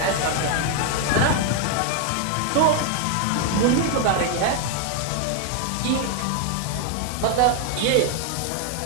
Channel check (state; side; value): different; both; correlation 0.00